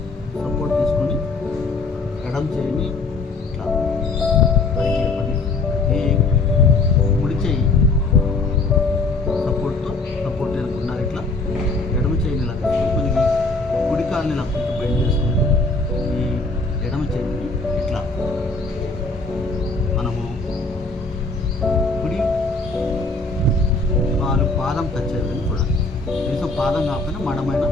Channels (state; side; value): quieter; right; 3.5 dB